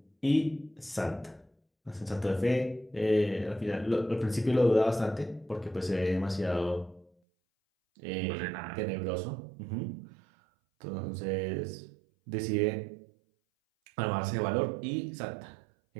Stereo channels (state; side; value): drops out; left; at 7.1 s